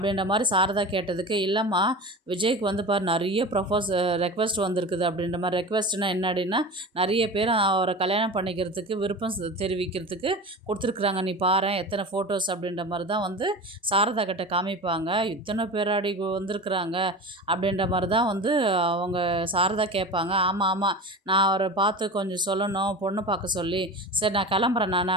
மாரி சாரதா கேட்டதுக்கு, "இல்லைம்மா, விஜய்க்கு வந்து பாரு நெறைய ரெக்வெஸ்ட் வந்திருக்குது." அப்படின்ற மாரி. ரெக்வெஸ்ட்னா என்னடின்னா, நெறைய பேர் அவர கல்யாணம் பண்ணிக்கிறதுக்கு விருப்பம் தெரிவிக்கிறதுக்கு குடுத்துருக்குறாங்க. நீ பாரேன் எத்தனை ஃபோட்டோஸ் அப்படின்ற மாரி தான் வந்து சாரதா கிட்ட காமிப்பாங்க. "இத்தனை பேராடி வந்திருக்குறாங்க?" அப்படின்ற மாரி தான் வந்து அவங்க சாரதா கேட்பாங்க. "ஆமா, ஆமா. நான் அவர பார்த்து கொஞ்சம் சொல்லணும், பொண்ணு பார்க்க சொல்லி. சரி நான் கிளம்புறேன் நான்."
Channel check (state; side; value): normal; both; correlation 0.31